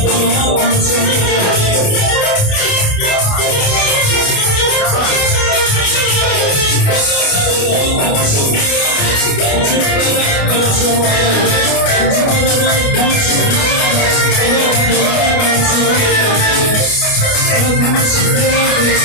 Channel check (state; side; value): late; right; 29 ms